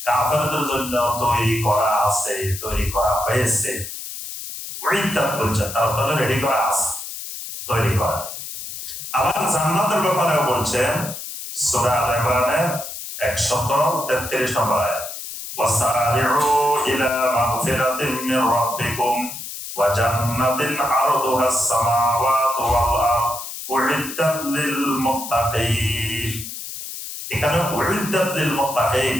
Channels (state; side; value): noise; left; hiss, 9 dB below the sound